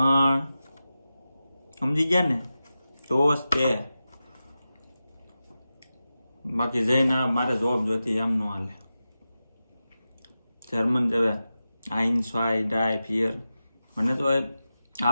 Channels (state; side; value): inverted; both; correlation -0.93